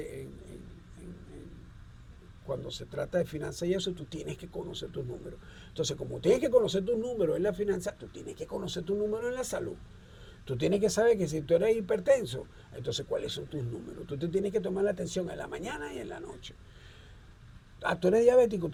cuando se trata de finanzas y eso, tú tienes que conocer tus números. Entonces, como tienes que conocer tus números en la finanza, tú tienes que conocer tus números en la salud. Tú tienes que saber que si tú eres hipertenso, entonces cuáles son tus números. Tú te tienes que tomar la atención en la mañana y en la noche. Tú eres diabético,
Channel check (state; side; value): identical; both; correlation 1.00